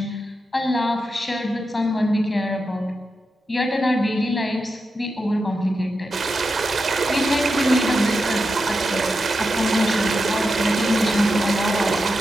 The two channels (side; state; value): both; normal; correlation 0.88